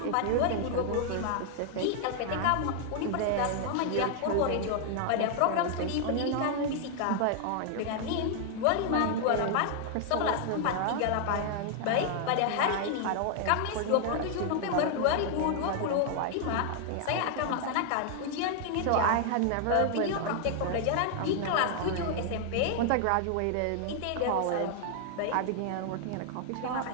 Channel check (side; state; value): both; different; correlation 0.00